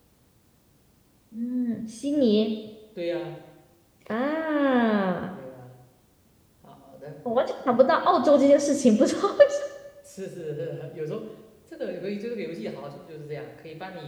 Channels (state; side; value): identical; both; correlation 1.00